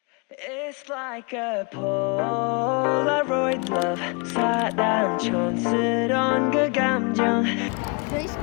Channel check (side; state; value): right; quieter; 32.6 dB